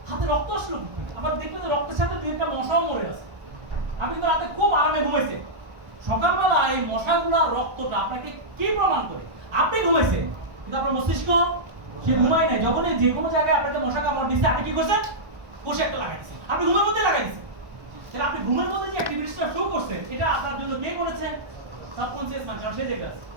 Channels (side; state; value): left; late; 1.2 ms